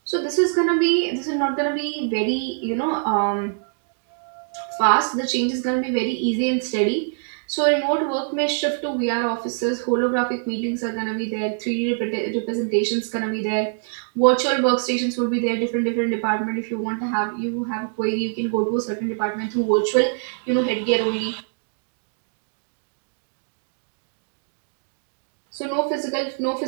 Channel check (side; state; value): left; silent; 63 dB below the other